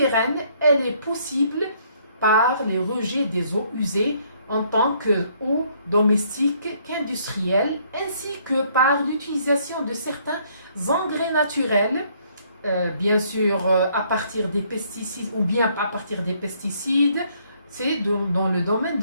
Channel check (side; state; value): both; inverted; correlation -0.66